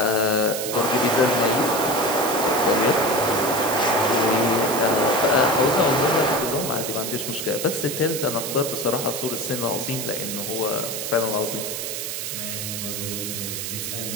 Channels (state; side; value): noise; right; hiss, 5 dB below the sound